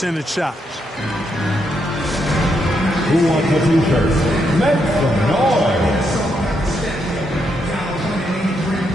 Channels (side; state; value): both; normal; correlation 0.79